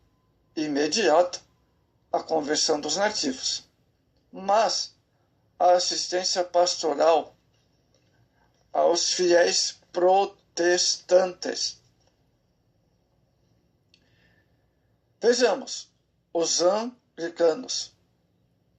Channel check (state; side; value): identical; both; correlation 1.00